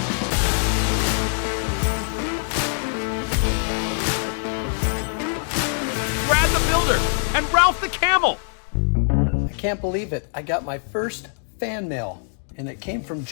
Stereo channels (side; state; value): right; silent; digital silence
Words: Brad the Builder and Ralph the Camel. I can't believe it. I got my first fan mail, and it came from